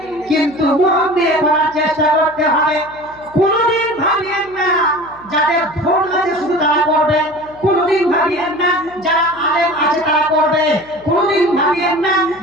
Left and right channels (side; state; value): left; noise; hum, 25 dB below the sound